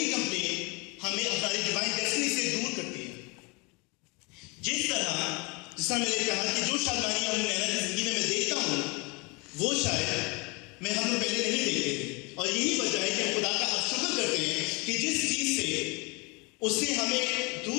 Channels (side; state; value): right; quieter; 28.6 dB